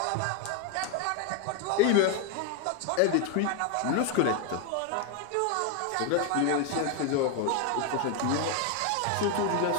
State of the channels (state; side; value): different; both; correlation 0.01